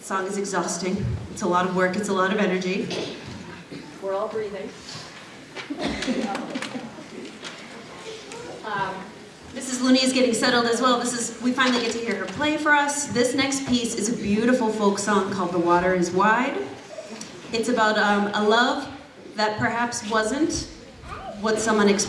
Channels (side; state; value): both; identical; correlation 1.00